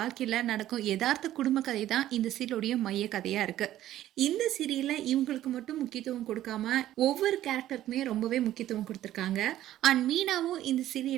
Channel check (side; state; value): left; quieter; 13.3 dB